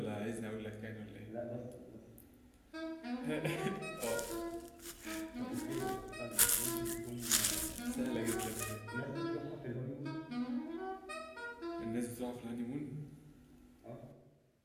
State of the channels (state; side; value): identical; both; correlation 1.00